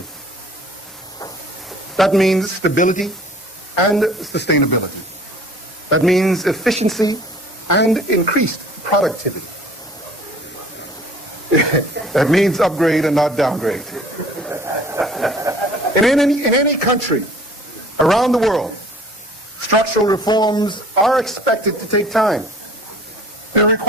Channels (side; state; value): both; normal; correlation 0.50